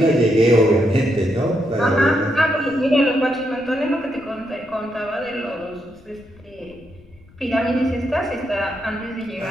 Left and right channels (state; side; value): noise; left; rumble, 26 dB below the sound